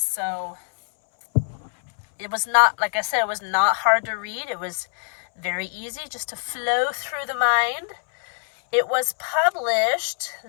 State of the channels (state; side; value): silent; right; 63 dB below the other